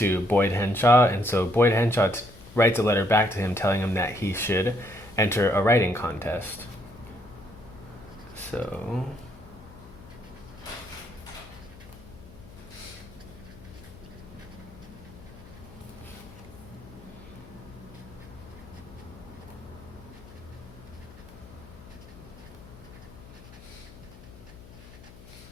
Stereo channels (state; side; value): noise; left; hum, 19 dB below the sound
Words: Boyd Henshaw, and so Boyd Henshaw writes a letter back to him telling him that he should enter a writing contest. So